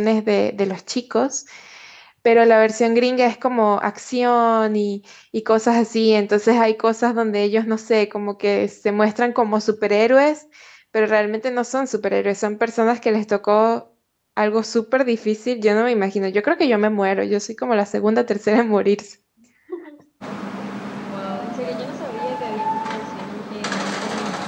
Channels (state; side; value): identical; both; correlation 1.00